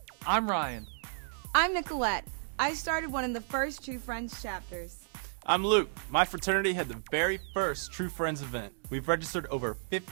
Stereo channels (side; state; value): left; silent; digital silence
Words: I'm Ryan. I'm Nicolette. I started one of the first True Friends chapters. I'm Luke. My fraternity had the very first True Friends event. We've registered over